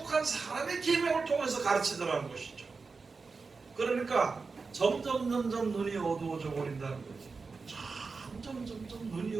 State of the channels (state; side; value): quieter; left; 4.5 dB